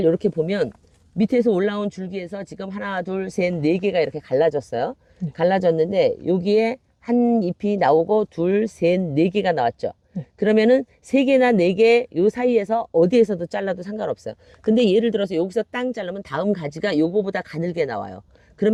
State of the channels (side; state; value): both; identical; correlation 1.00